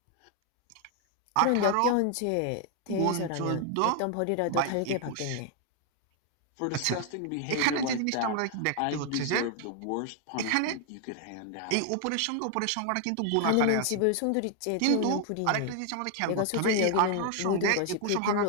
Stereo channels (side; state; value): both; different; correlation 0.00